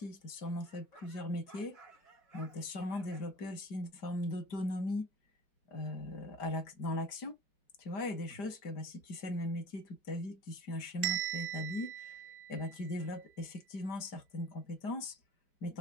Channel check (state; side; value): late; right; 5.0 ms